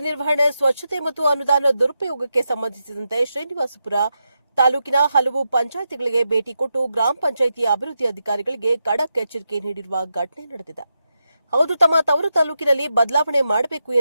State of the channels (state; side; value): inverted; both; correlation -0.87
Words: ನಿರ್ವಹಣೆ, ಸ್ವಚ್ಛತೆ ಮತ್ತು ಅನುದಾನ ದುರುಪಯೋಗಕ್ಕೆ ಸಂಬಂಧಿಸಿದಂತೆ ಶ್ರೀನಿವಾಸಪುರ ತಾಲೂಕಿನ ಹಲವು ಪಂಚಾಯಿತಿಗಳಿಗೆ ಭೇಟಿ ಕೊಟ್ಟು ಗ್ರಾಮ ಪಂಚಾಯಿತಿ ಅಭಿವೃದ್ಧಿ ಅಧಿಕಾರಿಗಳಿಗೆ ಖಡಕ್ ಎಚ್ಚರಿಕೆ ನೀಡಿರುವ ಘಟನೆ ನಡೆದಿದೆ. ಹೌದು, ತಮ್ಮ ತವರು ತಾಲೂಕಿನಲ್ಲಿ ಬದಲಾವಣೆ ಮಾಡಬೇಕು